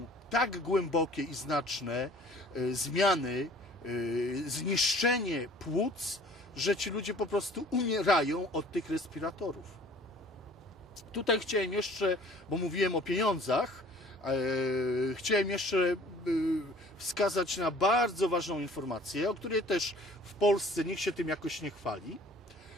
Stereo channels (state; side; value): normal; both; correlation 0.51